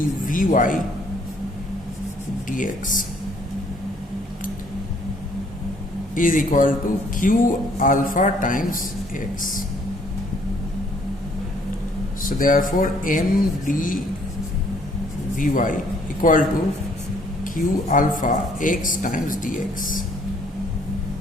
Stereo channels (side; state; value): both; normal; correlation 0.63